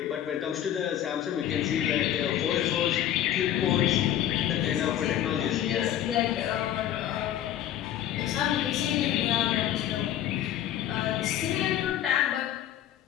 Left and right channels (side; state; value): right; quieter; 11.5 dB